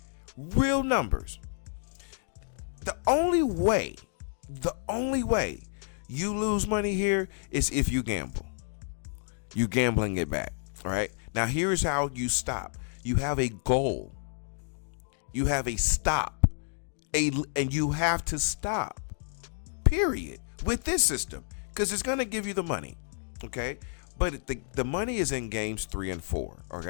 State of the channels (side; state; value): right; silent; 58 dB below the other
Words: Real numbers. The only way you lose money here is if you gamble. You gambling it back. All right. Now here's how you stop. You have a goal. You have a stop. And you have to stop. Period. With this system. Because it's gonna give you the money. Okay? But the money is in games 3 and 4.